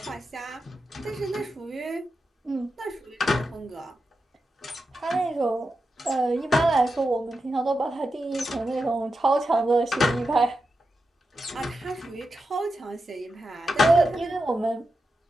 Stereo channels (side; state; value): both; normal; correlation 0.89